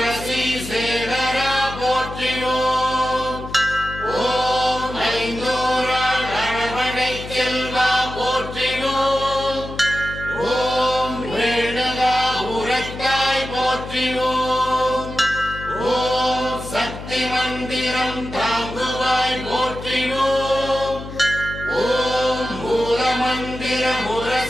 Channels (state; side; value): noise; left; hum, 11 dB below the sound